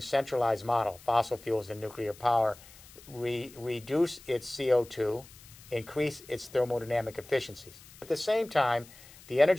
centralized model, fossil fuels and nuclear power, reduce its CO2, increase its thermodynamic efficiencies. At the same time, the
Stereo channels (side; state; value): left; noise; hiss, 21 dB below the sound